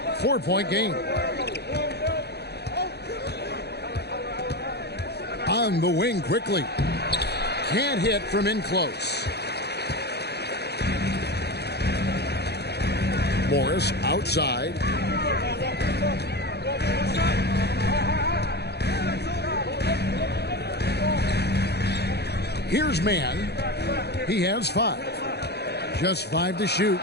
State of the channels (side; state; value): right; late; 0.48 ms